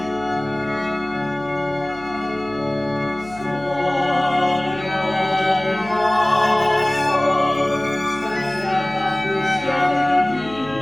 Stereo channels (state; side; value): noise; left; hum, 20 dB below the sound